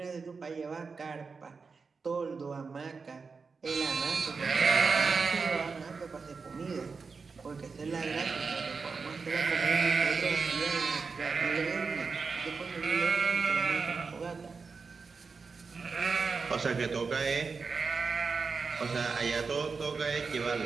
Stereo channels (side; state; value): left; quieter; 4.8 dB